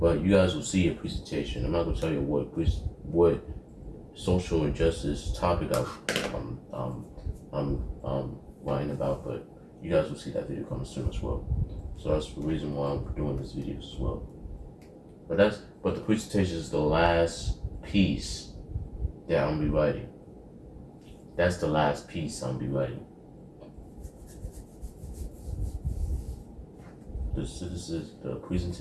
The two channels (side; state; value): both; identical; correlation 1.00